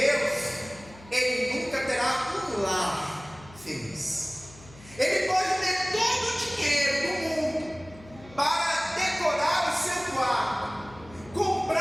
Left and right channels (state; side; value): noise; left; hum, 21 dB below the sound